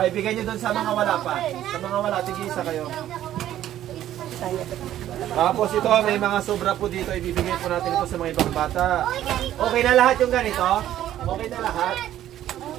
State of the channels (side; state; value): left; quieter; 12.3 dB